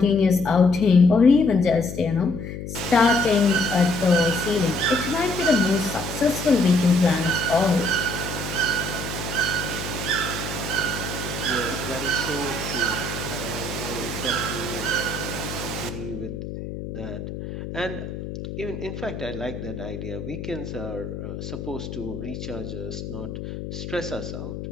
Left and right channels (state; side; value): noise; left; hum, 8 dB below the sound